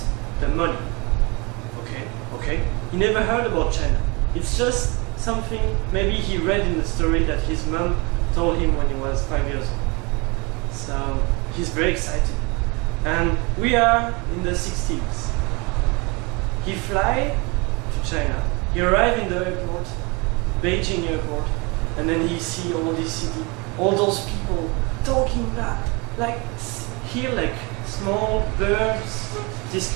the money." Okay. He never heard about China. It's just something maybe he read in the story that his mom told him when he was 5 years old. So he's very excited. And we are in the 60s. He fly to China. He arrived in the airport, Beijing airport, and then he see all this city, all those people talking like small birds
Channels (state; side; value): quieter; left; 28.1 dB